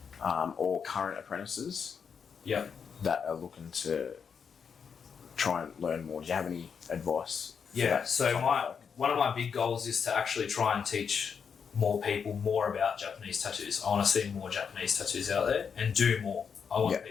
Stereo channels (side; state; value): right; quieter; 6.6 dB